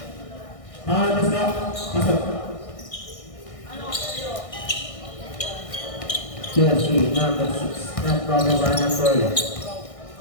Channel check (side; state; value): right; late; 1.6 ms